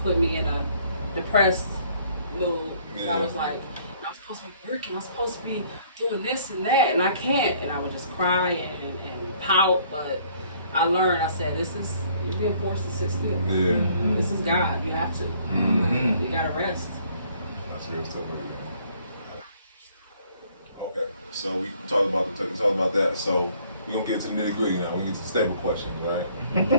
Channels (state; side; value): inverted; both; correlation -0.61